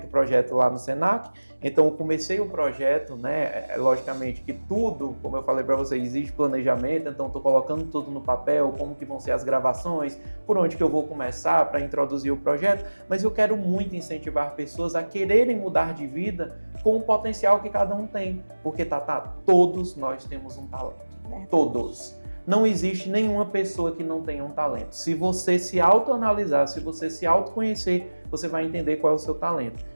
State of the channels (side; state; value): both; inverted; correlation -1.00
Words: o projeto lá no Senac, então eu comecei o projeto, né? Logicamente que tudo, como eu falei para vocês, exige planejamento, então estou colocando tudo no papel, como que vão ser as gravações, por onde que eu vou começar para introduzir o projeto, mas eu quero muito incentivar pessoas a quererem mudar de vida com o potencial que cada um tem, porque todos nós temos um talento, todos. Não existe nenhuma pessoa que não tenha um talento. Se você se autoanalisar, se você se autoconhecer, você vai entender qual é o seu talento.